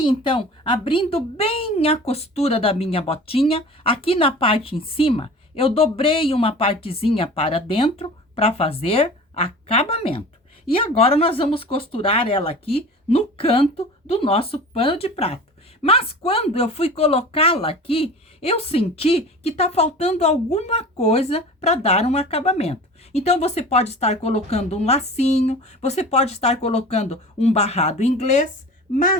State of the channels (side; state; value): both; normal; correlation 0.38